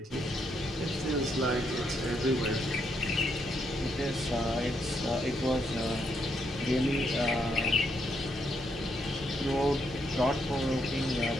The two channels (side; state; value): both; normal; correlation 0.77